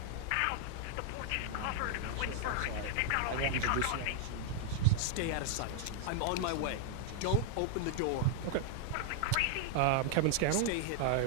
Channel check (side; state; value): both; different; correlation 0.00